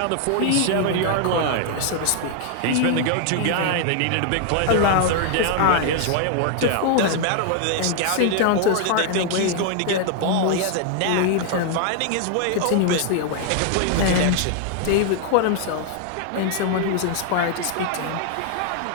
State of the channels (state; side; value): different; both; correlation 0.00